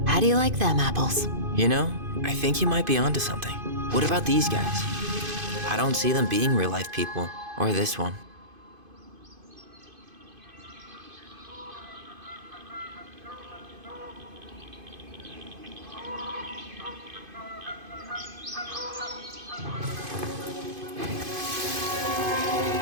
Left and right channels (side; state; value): left; late; 2.5 ms